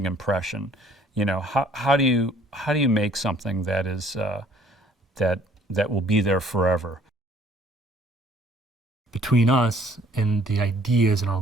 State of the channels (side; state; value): both; normal; correlation 0.58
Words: impression? You know, how do you make something that is that will be there forever? Between us and the ideas and